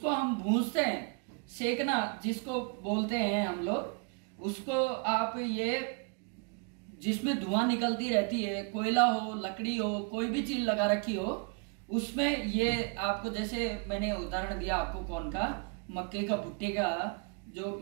हम भूंजते हैं, सेकना जिसको बोलते हैं हम लोग, उसको आप ये जिसमें धुआं निकलती रहती है, कोयला हो, लकड़ी हो, कोई भी चीज लगा रखी हो, उसमें ये आपको, जैसे मैंने उदाहरण दिया आपको कौन का, मक्के का, भुट्टे का, जो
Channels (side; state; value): left; quieter; 34.6 dB